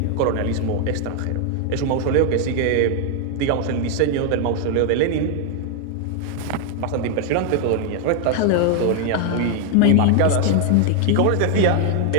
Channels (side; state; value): both; different; correlation 0.00